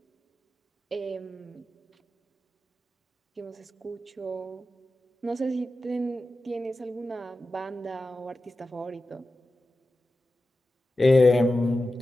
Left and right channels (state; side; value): normal; both; correlation 0.93